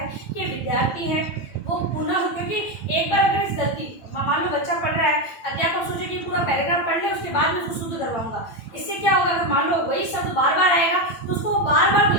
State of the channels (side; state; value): right; late; 9.0 ms